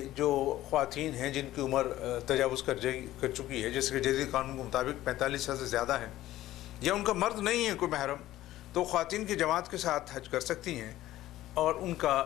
جو خواتین ہیں جن کی عمر تجاوز کر چکی ہے، جیسے کہ جدید قانون کے مطابق 45 سال سے زیادہ ہیں، یا ان کا مرد نہیں ہے کوئی محرم، تو خواتین کی جماعت کے ساتھ حج کر سکتی ہیں اور ان کا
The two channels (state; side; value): quieter; right; 14.9 dB